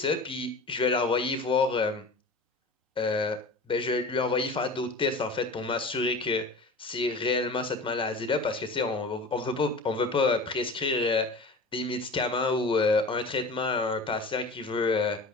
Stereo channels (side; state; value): right; quieter; 3.1 dB